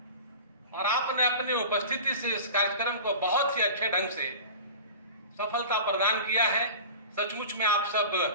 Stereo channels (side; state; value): both; inverted; correlation -0.36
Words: और आपने अपनी उपस्थिति से इस कार्यक्रम को बहुत ही अच्छे ढंग से सफलता प्रदान किया है। सचमुच में आप सब